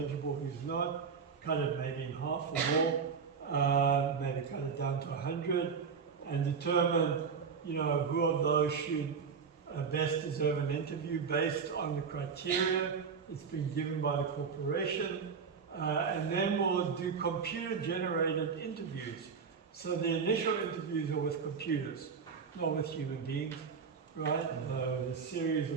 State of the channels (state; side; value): quieter; left; 5.9 dB